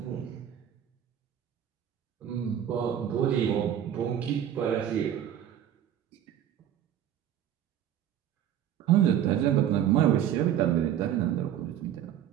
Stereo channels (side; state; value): left; quieter; 10.3 dB